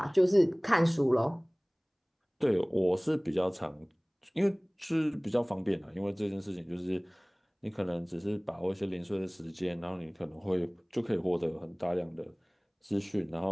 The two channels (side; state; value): both; identical; correlation 1.00